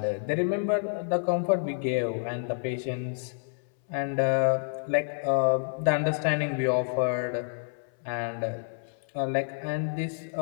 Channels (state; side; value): silent; right; 59 dB below the other